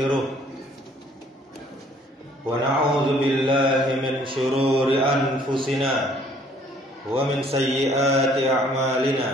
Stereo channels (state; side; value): normal; both; correlation 0.60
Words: wa na'udzu billahi min shururi anfusina wa min sayyiati